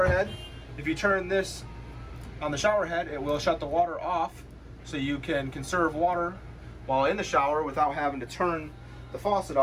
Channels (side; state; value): both; identical; correlation 1.00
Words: head If you turn this on the shower head, it will shut the water off, so you can conserve water while in the shower without having to turn the faucet